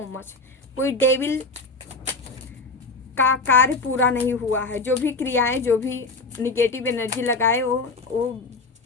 much. कोई डेविल का कार्य पूरा नहीं हुआ है। जो भी क्रियाएं, जो भी निगेटिव एनर्जी लगाए वो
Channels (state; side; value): quieter; right; 3.5 dB